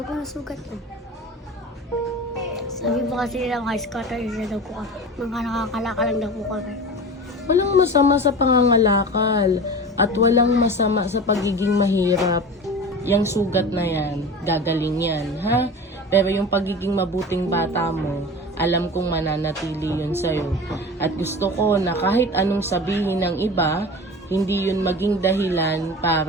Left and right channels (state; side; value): normal; both; correlation 0.33